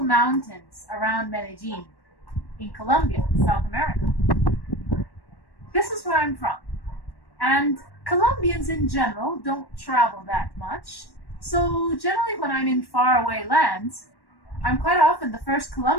mountains around Medellin in Colombia, South America. This is where I'm from. And Colombians in general don't travel that much. So generally when I'm in faraway lands, I'm quite often the first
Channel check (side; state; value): right; late; 1.1 ms